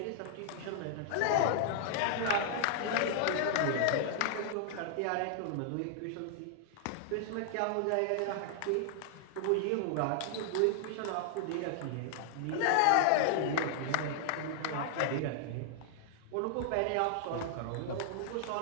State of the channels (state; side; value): different; both; correlation -0.01